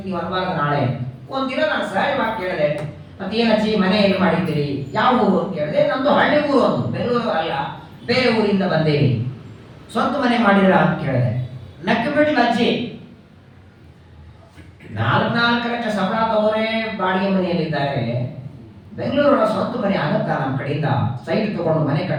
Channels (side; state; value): both; identical; correlation 1.00